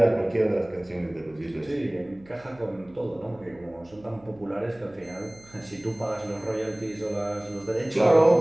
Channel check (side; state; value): right; noise; hum, 26 dB below the sound